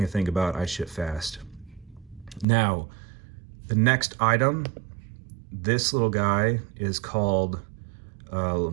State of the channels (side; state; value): left; drops out; at 2.5 s